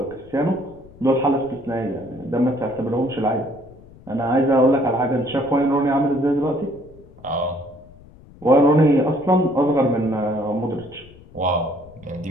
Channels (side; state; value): left; noise; rumble, 23 dB below the sound